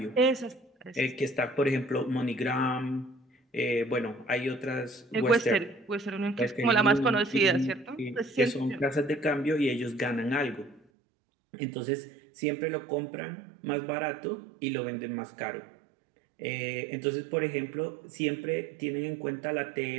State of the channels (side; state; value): left; drops out; at 10.8 s